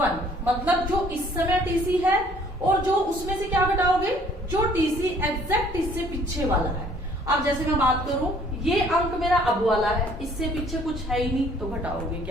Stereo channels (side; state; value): both; normal; correlation 0.59